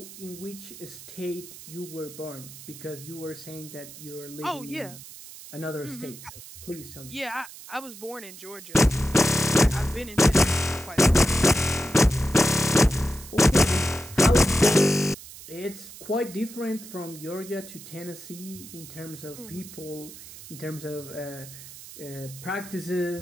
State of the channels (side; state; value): right; noise; hiss, 16 dB below the sound